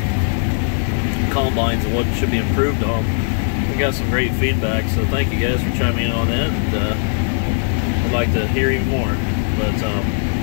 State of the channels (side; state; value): right; silent; 62 dB below the other